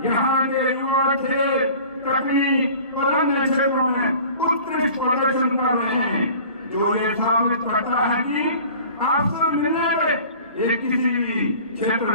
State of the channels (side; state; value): both; inverted; correlation -0.45